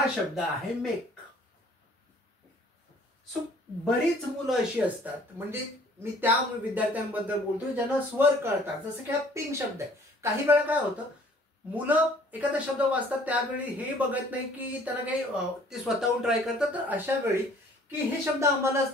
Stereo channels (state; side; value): normal; both; correlation 0.55